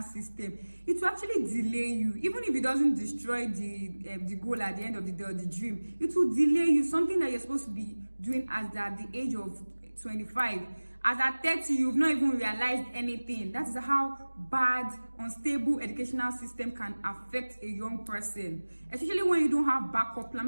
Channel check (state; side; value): inverted; both; correlation -1.00